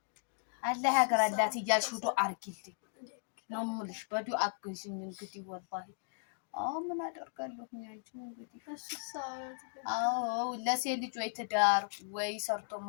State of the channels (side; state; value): right; silent; digital silence